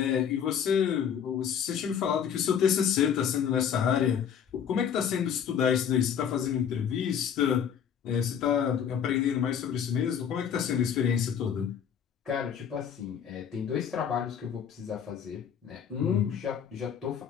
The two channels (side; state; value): right; quieter; 8.1 dB